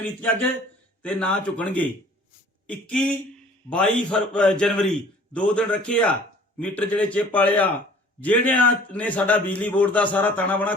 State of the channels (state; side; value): normal; both; correlation 0.51